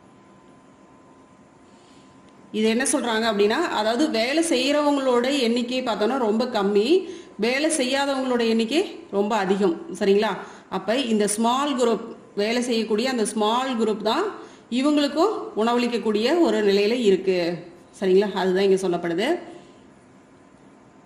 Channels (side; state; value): both; identical; correlation 1.00